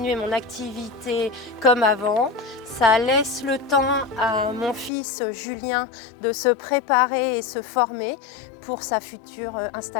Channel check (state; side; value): drops out; right; at 4.9 s